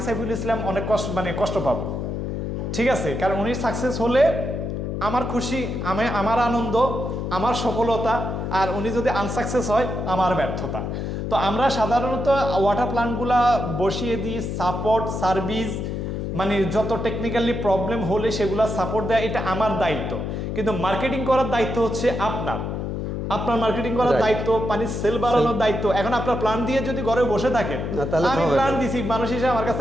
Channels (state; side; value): noise; left; hum, 3 dB below the sound